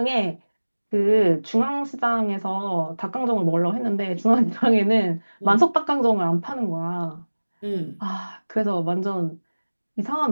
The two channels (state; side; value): inverted; both; correlation -1.00